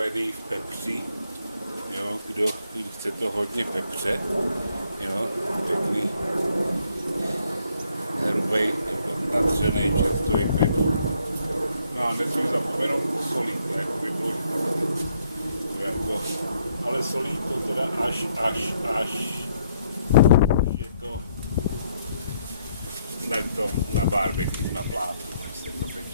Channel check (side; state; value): both; inverted; correlation -0.71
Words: v pepři. Jo, kdo chce to hodně pepře, jo, pěkný, hrubej, natřenej čerstvý pepř. No a nesmím zapomenout posolit, to jako by bylo špatný. Jako, ale solí to teda až je to na barbecue, na plátu, než se to